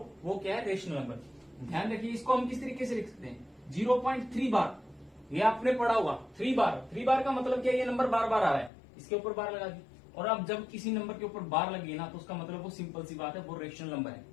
वो क्या है रेशनल नंबर। ध्यान रखिए इसको हम किस तरीके से लिख सकते हैं, 0.3 बार, ये आपने पढ़ा हुआ 3 बार का मतलब क्या है, ये नंबर बार बार आ रहा है, इसके ऊपर बार लगा दी। और अब जब किसी नंबर के ऊपर बार लगी ना, तो उसका मतलब वो सिंपल सी बात है, वो रेशनल नंबर है।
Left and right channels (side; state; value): right; drops out; at 8.7 s